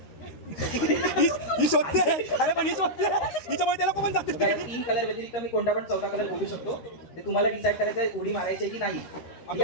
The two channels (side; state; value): right; late; 13 ms